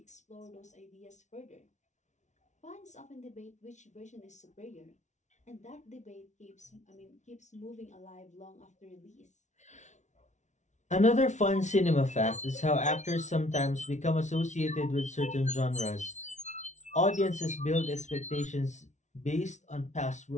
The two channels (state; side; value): late; right; 0.34 ms